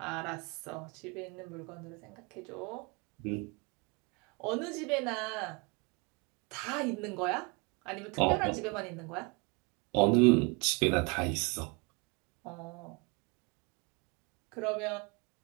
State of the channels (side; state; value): left; quieter; 30.4 dB